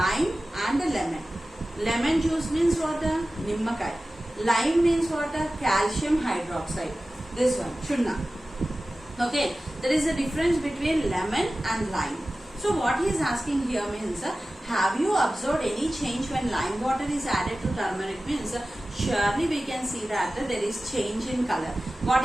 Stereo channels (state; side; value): normal; both; correlation 0.96